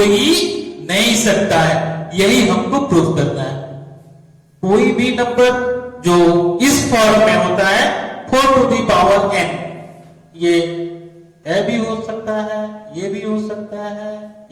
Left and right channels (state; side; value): identical; both; correlation 1.00